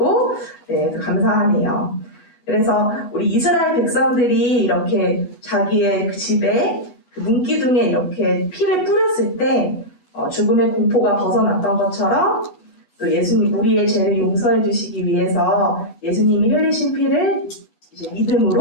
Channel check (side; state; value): right; late; 8.2 ms